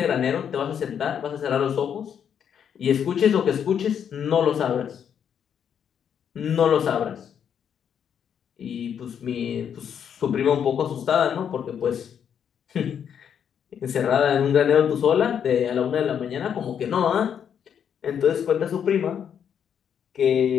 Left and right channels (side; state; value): right; quieter; 8.3 dB